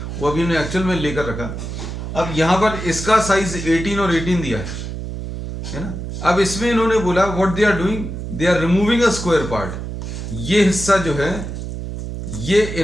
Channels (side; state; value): right; noise; hum, 7 dB below the sound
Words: वो अभी हमने एक्चुअल में लेकर रखा। अब यहाँ पर इसका साइज 18 और 18 दिया है ना। अब इसमें इन्होंने बोला what they are doing, they are removing a square part. ये हिस्सा जो है ये